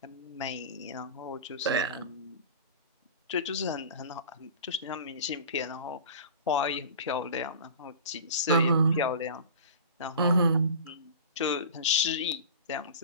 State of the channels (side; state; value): both; inverted; correlation -0.36